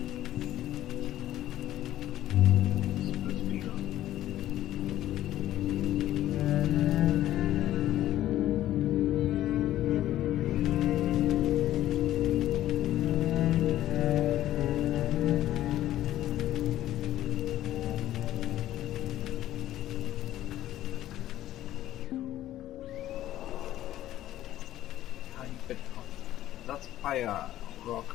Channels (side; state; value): right; quieter; 13.5 dB